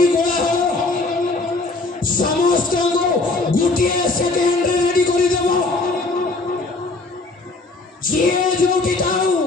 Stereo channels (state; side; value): quieter; right; 3.3 dB